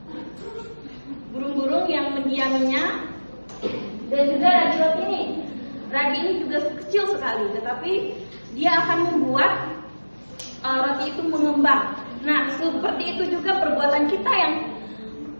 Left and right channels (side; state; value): both; inverted; correlation -1.00